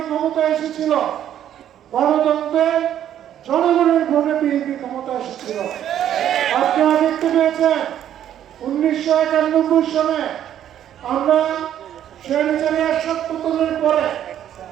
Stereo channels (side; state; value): left; quieter; 10.7 dB